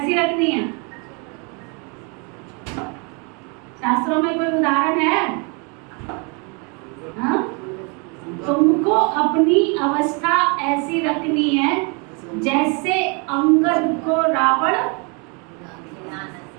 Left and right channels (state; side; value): quieter; left; 33.3 dB